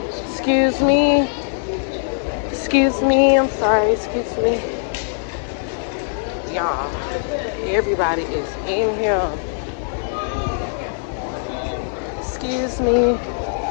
Excuse me. Excuse me. I'm sorry. Excuse me. Y'all, everybody is in here. Excuse me.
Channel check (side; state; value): right; silent; digital silence